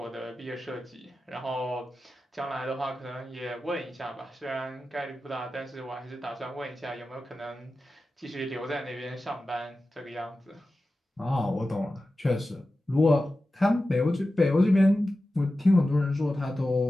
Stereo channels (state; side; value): normal; both; correlation 0.94